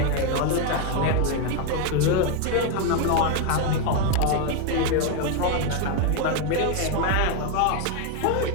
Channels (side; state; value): both; different; correlation 0.01